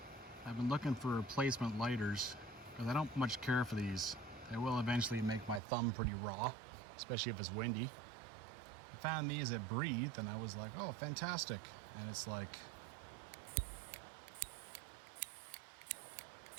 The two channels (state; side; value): drops out; left; at 5.6 s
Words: I've been looking for replacement lighters because I don't much care for these. They will eventually make my thumb pretty raw, especially if it's windy. I found these at Breathe and I was like, oh, fantastic. And it's like,